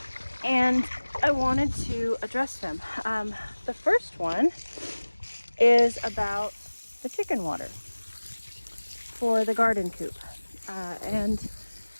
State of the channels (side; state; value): both; inverted; correlation -1.00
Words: and I wanted to address them. The first one is about the chicken water for the garden coop, and